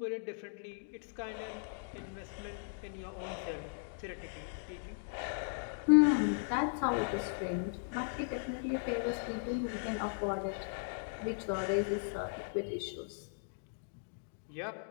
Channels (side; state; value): right; silent; digital silence